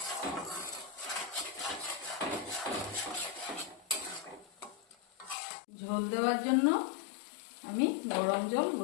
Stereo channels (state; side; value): drops out; right; at 5.4 s